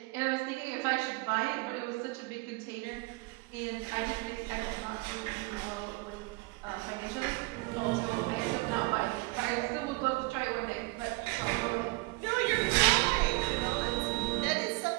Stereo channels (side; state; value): left; quieter; 24.0 dB